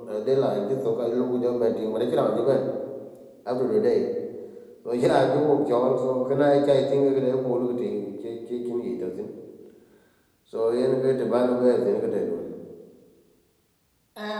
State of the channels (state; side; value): identical; both; correlation 1.00